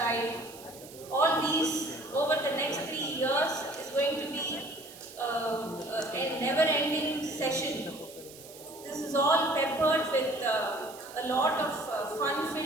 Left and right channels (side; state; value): right; noise; hiss, 18 dB below the sound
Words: All these over the next 3 years is going to be a never-ending session. This is all peppered with a lot of